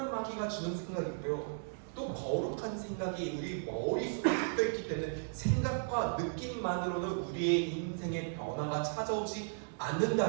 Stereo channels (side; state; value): left; silent; digital silence